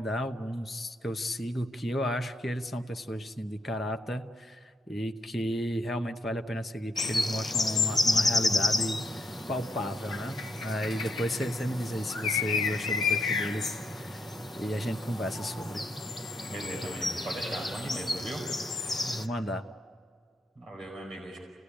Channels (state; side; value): normal; both; correlation 0.78